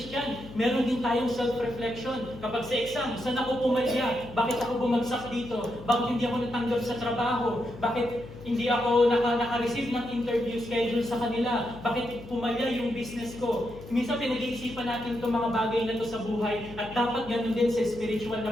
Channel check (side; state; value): left; noise; hum, 15 dB below the sound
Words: meron din tayong self-reflection. Kapag sa exam, saan ako pumalya? Bakit ako bumagsak dito? Bakit hindi ako natanggap sa trabaho? Bakit hindi ako naka-receive ng interview schedule sa kanila? Bakit pumalya yung business ko? Minsan pinag-iisipan natin itong mga bagay na ito sa buhay at dapat ganun din sa spiritual